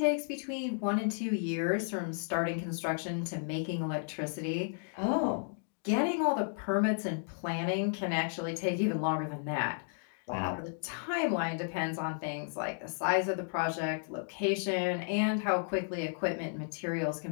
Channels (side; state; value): right; silent; digital silence